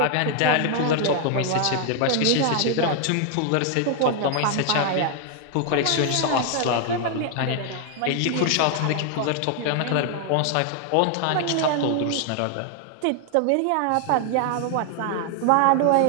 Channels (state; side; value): different; both; correlation 0.00